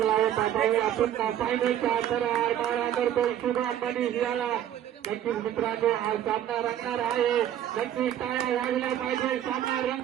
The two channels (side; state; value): left; quieter; 11.0 dB